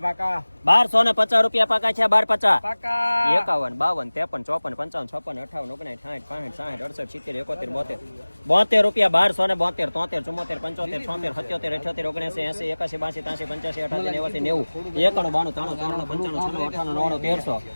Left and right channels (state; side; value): inverted; both; correlation -1.00